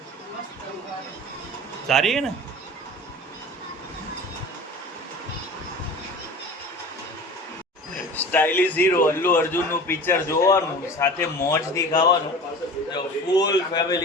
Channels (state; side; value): normal; both; correlation 0.37